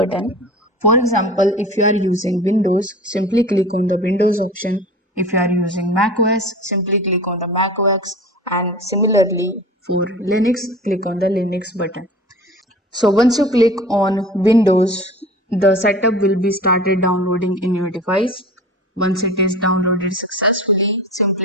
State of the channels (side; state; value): both; normal; correlation 0.38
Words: For example, if you are using Windows, simply click on the Windows option. If you are using Mac OS, simply click on the Mac OS, and similarly for Linux, click on the Linux button. So once you click on Windows, the setup will be started downloading in your device. Once it is downloaded successfully, simply